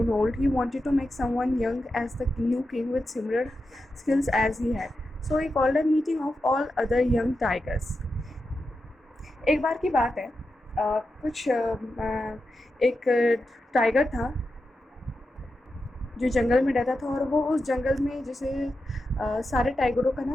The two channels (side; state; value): both; normal; correlation 0.89